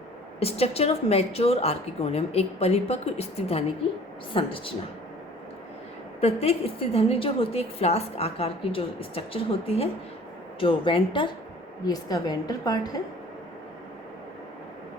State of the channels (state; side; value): normal; both; correlation 0.50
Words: स्ट्रक्चर ऑफ मैच्योर आर्किगोनियम, एक परिपक्व स्त्रीधानी की संरचना। प्रत्येक स्त्रीधानी जो होती है एक फ्लास्क आकार की जो स्ट्रक्चर होती है। जो वेंटर, ये इसका वेंटर पार्ट है